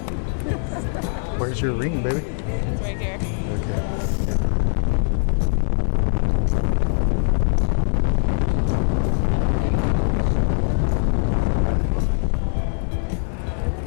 Where's your ring, baby? It's right here. Okay.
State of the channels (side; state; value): right; silent; 59 dB below the other